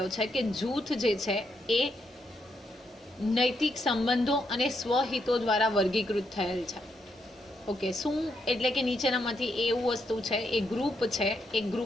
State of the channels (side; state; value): both; normal; correlation 0.79